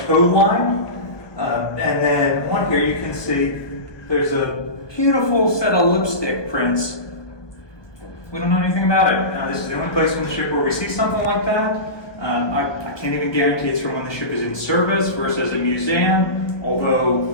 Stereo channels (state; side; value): late; right; 1.2 ms